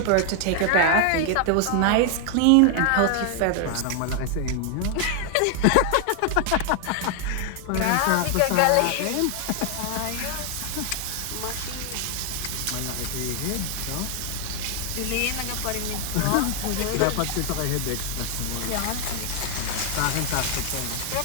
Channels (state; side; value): different; both; correlation 0.00